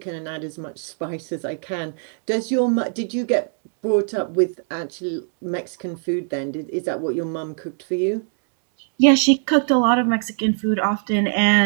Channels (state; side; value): silent; left; 64 dB below the other